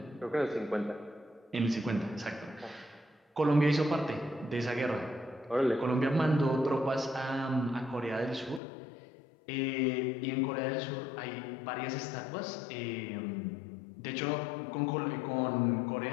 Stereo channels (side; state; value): right; drops out; at 8.6 s